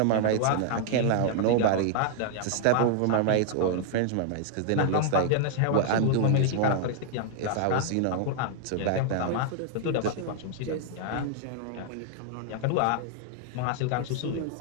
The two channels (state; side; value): different; both; correlation 0.00